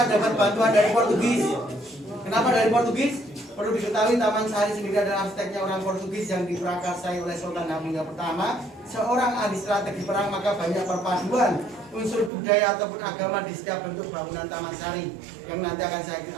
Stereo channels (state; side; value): drops out; left; at 12.3 s